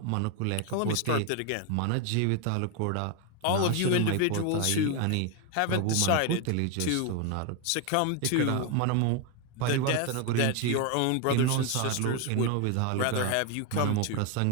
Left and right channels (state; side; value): different; both; correlation 0.01